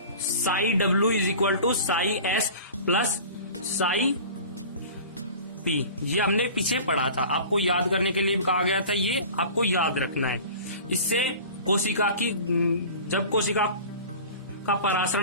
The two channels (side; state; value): both; inverted; correlation -0.39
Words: Psi W is equal to psi S plus psi P, ये हमने पीछे पढ़ा था, आपको याद करने के लिए कहा गया था, ये आपको याद रखना है। इससे कोशिका की, जब कोशिका का